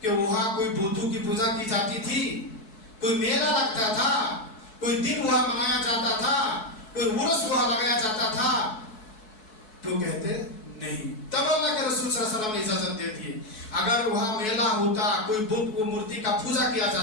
کہ وہاں کوئی بودھو کی پوجا کی جاتی تھی، کوئی میلہ لگتا تھا، کوئی دن وہاں منایا جاتا تھا، کوئی عرس وہاں لگایا جاتا تھا؟ تو کہتے نہیں. تب اللہ کے رسول صلی اللہ علیہ وسلم نے اجازت دے دی. اگر وہاں میلہ ہوتا، کوئی بت کو مورتی کا پوجا کیا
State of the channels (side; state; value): right; late; 4.6 ms